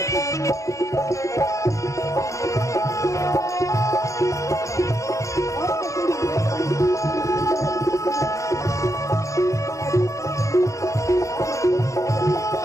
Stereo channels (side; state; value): right; late; 0.15 ms